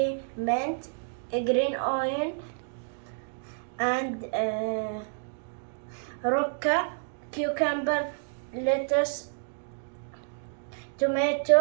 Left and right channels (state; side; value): silent; left; digital silence